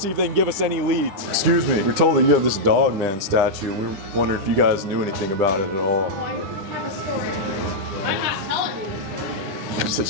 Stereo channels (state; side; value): late; left; 10 ms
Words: if they can give us any leads. Excuse me, we're told that you have this Dogman statue, and we were wondering if you guys knew anything about it at all. Oh, I have a story. I'm not telling you the story. She said